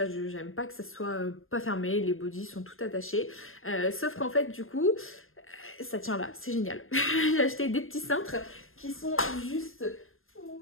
J'aime pas que ça soit pas fermé. Les bodys sont tout attachés. Sauf qu'en fait, du coup, ça tient là. C'est génial. J'ai acheté des petits cintres qui sont juste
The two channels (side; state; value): right; late; 0.60 ms